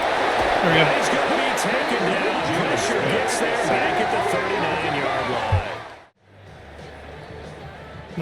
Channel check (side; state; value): both; identical; correlation 1.00